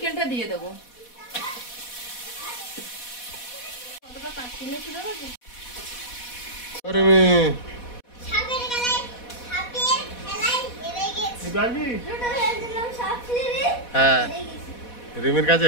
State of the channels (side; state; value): right; late; 4.1 ms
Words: দিয়ে দেবো। কতটা কাটছি না শুধু দেখো। ওরে মেয়ে, হ্যাঁ রিমির কাছে